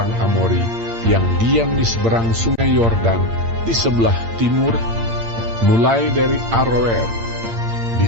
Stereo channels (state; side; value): late; left; 8.7 ms